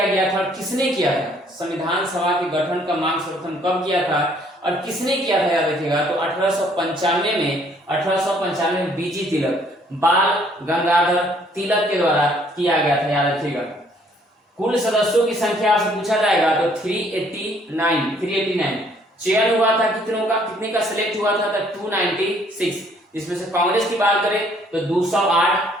गया था और किसने किया था? संविधान सभा के गठन का मांग सर्वप्रथम कब किया था और किसने किया था? याद रखिएगा, तो 1895 में बीजी तिलक, बाल गंगाधर तिलक के द्वारा किया गया था। याद रखिएगा। कुल सदस्यों की संख्या आपसे पूछा जाएगा तो 389। चयन हुआ था कितनों का? कितने का सिलेक्ट हुआ था? तो 296। इसमें से कांग्रेस की बात करें तो 208,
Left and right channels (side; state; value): both; normal; correlation 0.63